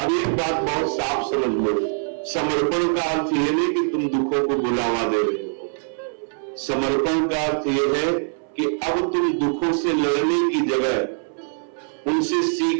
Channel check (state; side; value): silent; left; 60 dB below the other